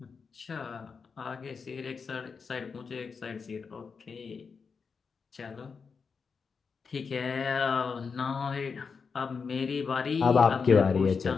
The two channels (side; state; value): right; quieter; 5.4 dB